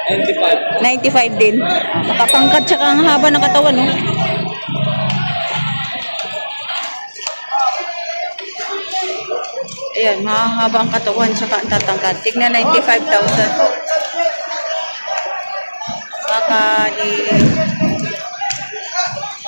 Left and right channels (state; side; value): inverted; both; correlation -1.00